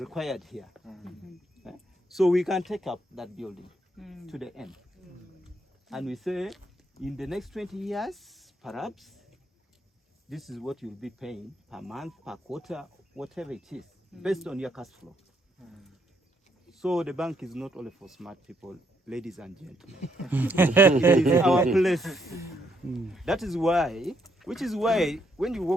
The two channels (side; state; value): both; normal; correlation 0.73